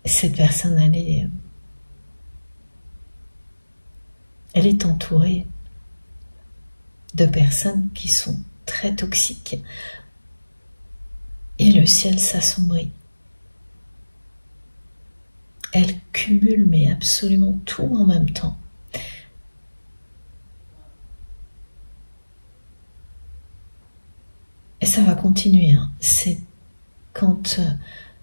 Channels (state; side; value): inverted; both; correlation -1.00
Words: cette personne, elle est entourée de personnes qui sont très toxiques. Et le ciel s'assombrit. Elle cumule mais absolument tout en même temps. Et ça va continuer, hein. C'est quand